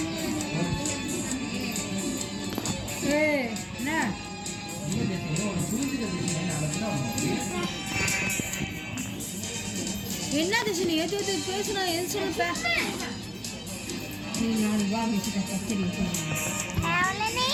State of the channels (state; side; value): identical; both; correlation 1.00